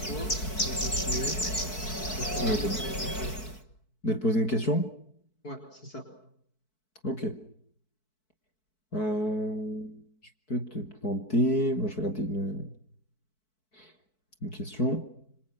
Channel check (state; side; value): late; right; 4.6 ms